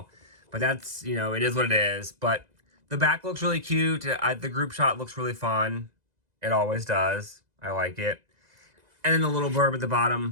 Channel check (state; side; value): late; left; 2.0 ms